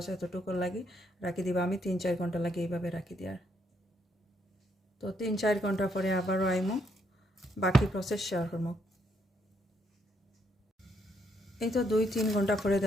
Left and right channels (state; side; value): normal; both; correlation 0.74